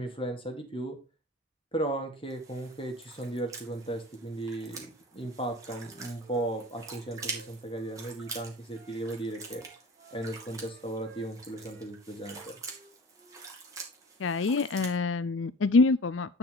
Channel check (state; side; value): normal; both; correlation 0.41